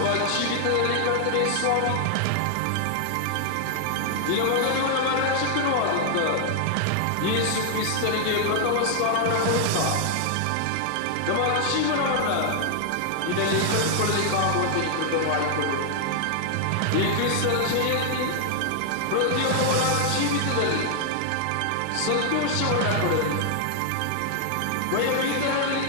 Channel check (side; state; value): both; different; correlation 0.00